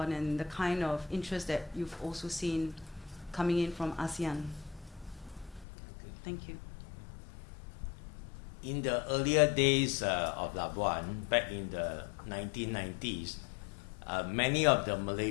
and the kind of interest that you've also seen coming in from ASEAN? Thank you. In the earlier days of Labuan, back in the 1990s, many of the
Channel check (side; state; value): right; drops out; at 5.7 s